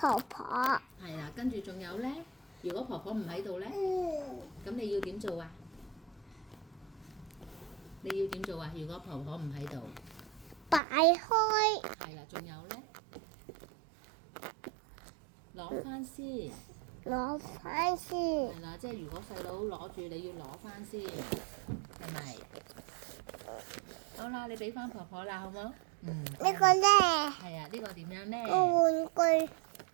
婆。係啦，跟住仲有咧，如果婆婆唔喺度咧，咁你要點做啊？你要點做啊？如果婆婆唔喺度，擺開。係啦，仲有咧，攞翻先。攞翻先。係啦，即係如果細佬攞住，你要攞翻先，係咪？好啦，你俾翻婆婆啦，好冇？呢個咧，係啊，呢個點樣咧？個玩具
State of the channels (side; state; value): left; drops out; at 10.8 s